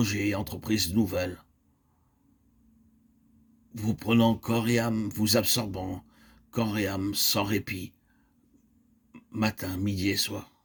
et entreprises nouvelles, vous prenant corps et âme, vous absorbant corps et âme sans répit, matin, midi et soir.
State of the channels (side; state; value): both; identical; correlation 1.00